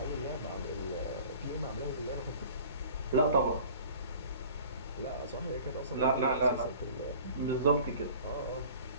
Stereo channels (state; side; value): inverted; both; correlation -0.46